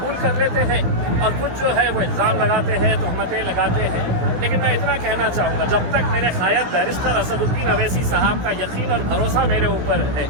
कर लेते हैं और कुछ जो है वो इल्ज़ाम लगाते हैं, तहमतें लगाते हैं। लेकिन मैं इतना कहना चाहूँगा, जब तक मेरे कायद बैरिस्टर असदुद्दीन अवैसी साहब का यकीन और भरोसा मेरे ऊपर है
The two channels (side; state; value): left; late; 16 ms